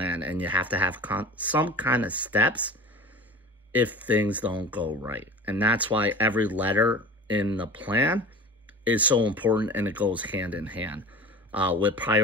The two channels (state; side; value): normal; both; correlation 0.36